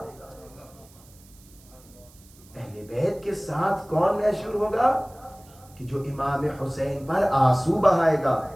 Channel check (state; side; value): noise; right; hiss, 26 dB below the sound